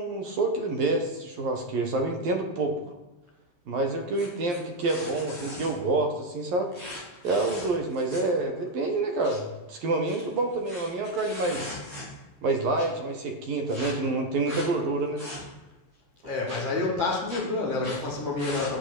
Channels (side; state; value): left; late; 11 ms